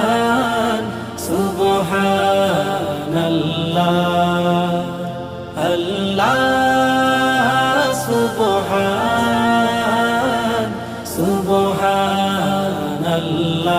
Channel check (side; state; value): both; identical; correlation 1.00